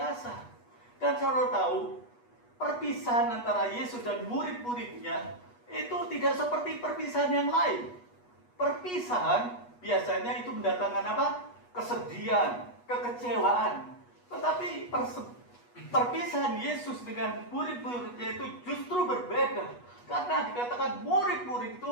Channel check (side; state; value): right; late; 8.2 ms